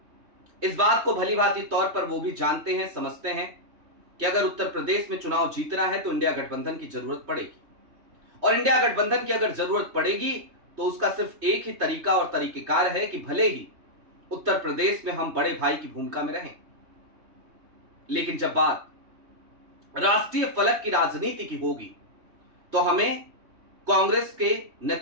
इस बात को भली भांति तौर पर वो भी जानते हैं, समझते हैं कि अगर उत्तर प्रदेश में चुनाव जीतना है तो इंडिया गठबंधन की जरूरत पड़ेगी, और इंडिया गठबंधन की अगर जरूरत पड़ेगी तो उसका सिर्फ एक ही तरीका और तरीकेकार है कि भले ही उत्तर प्रदेश में हम बड़े भाई की भूमिका में रहें, लेकिन जब बात राष्ट्रीय फलक की राजनीति की होगी तो हमें कांग्रेस के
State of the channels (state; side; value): late; left; 3.2 ms